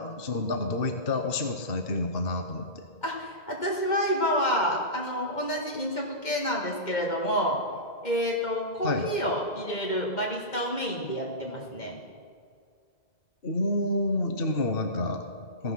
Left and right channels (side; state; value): right; late; 2.1 ms